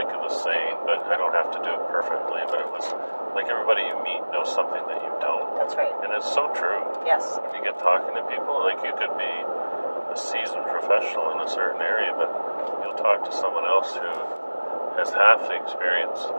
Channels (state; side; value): inverted; both; correlation -1.00